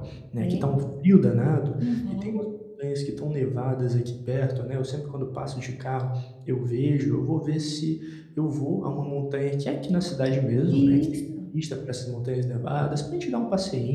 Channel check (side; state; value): both; identical; correlation 1.00